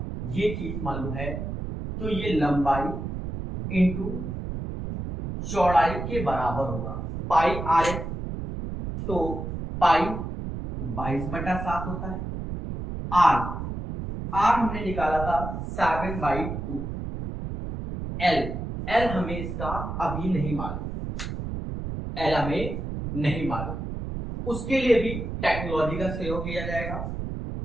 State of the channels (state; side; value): noise; right; rumble, 6 dB below the sound